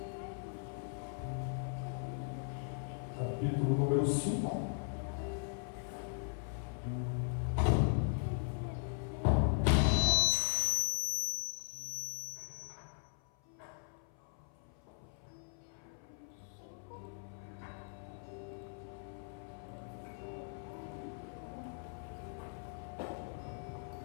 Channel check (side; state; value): right; silent; 52 dB below the other